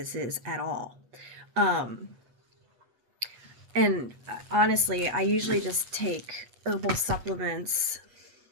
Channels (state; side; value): late; left; 8.3 ms